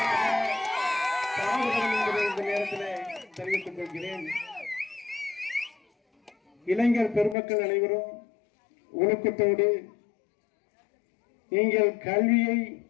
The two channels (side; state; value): right; drops out; at 7.4 s